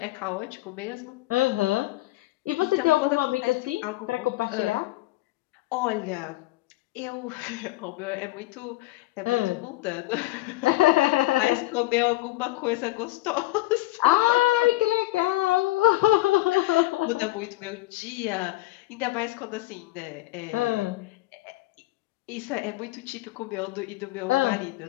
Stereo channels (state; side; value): quieter; right; 18.4 dB